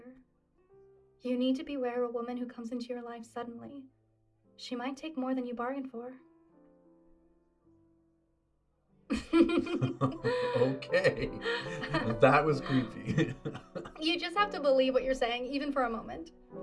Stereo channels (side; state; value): both; identical; correlation 1.00